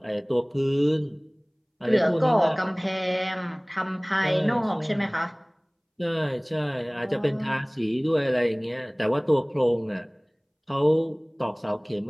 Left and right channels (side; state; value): both; identical; correlation 1.00